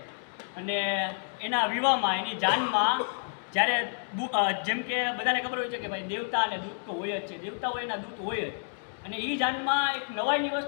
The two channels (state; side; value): silent; right; digital silence